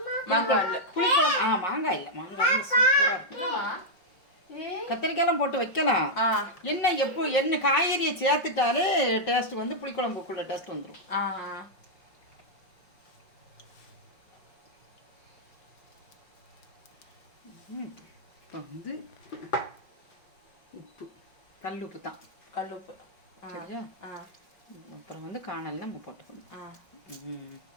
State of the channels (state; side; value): late; right; 5.4 ms